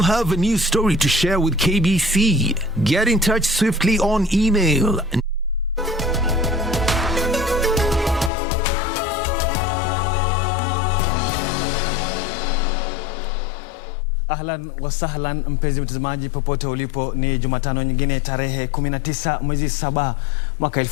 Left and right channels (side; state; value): right; drops out; at 8.3 s